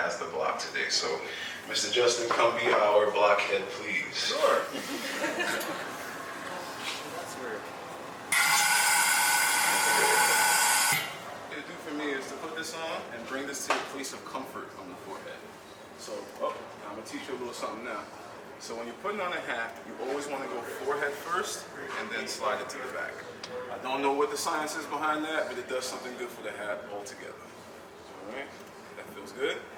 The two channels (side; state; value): both; identical; correlation 1.00